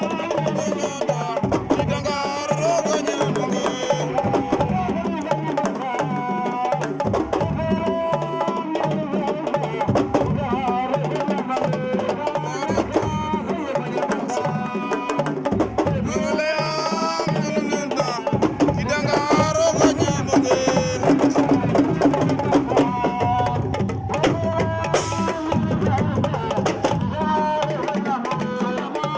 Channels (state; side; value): identical; both; correlation 1.00